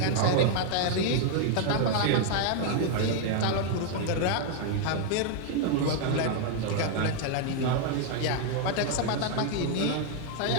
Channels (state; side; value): different; both; correlation 0.00